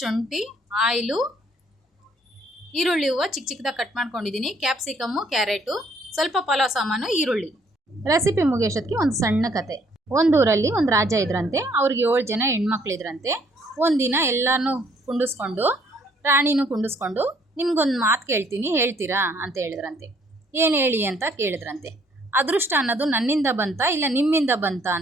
ಆಯಿಲು, ಈರುಳ್ಳಿ ಹೂವು ಚಿಕ್ಕ ಚಿಕ್ಕದಾಗಿ ಕಟ್ ಮಾಡ್ಕೊಂಡಿದ್ದೀನಿ, ಕ್ಯಾಪ್ಸಿಕಮ್ಮು, ಕ್ಯಾರೆಟು, ಸ್ವಲ್ಪ ಪಲಾವ್ ಸಾಮಾನು, ಈರುಳ್ಳಿ. ರೆಸಿಪಿ ಮುಗಿಯೋಷ್ಟೊತ್ತಿಗೆ ಒಂದು ಸಣ್ಣ ಕತೆ. ಒಂದೂರಲ್ಲಿ ಒಂದು ರಾಜ ಇದ್ರಂತೆ. ಅವ್ರಿಗೆ 7 ಜನ ಹೆಣ್ಮಕ್ಳಿದ್ರಂತೆ. ಒಂದಿನ ಎಲ್ಲನೂ ಕುಂಡಿಸ್ಕೊಂಡು, ರಾಣಿನೂ ಕುಂಡಿಸ್ಕೊಂಡು, ನಿಮ್ಗೊಂದು ಮಾತು ಕೇಳ್ತೀನಿ, ಹೇಳ್ತೀರಾ ಅಂತ ಹೇಳಿದ್ರಂತೆ. ಏನು ಹೇಳಿ ಅಂತ ಕೇಳಿದ್ರಂತೆ. ಅದೃಷ್ಟ ಅನ್ನೋದು ನನ್ನಿಂದ ಬಂತಾ ಇಲ್ಲ ನಿಮ್ಮಿಂದ ಬಂತಾ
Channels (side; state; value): both; normal; correlation 0.64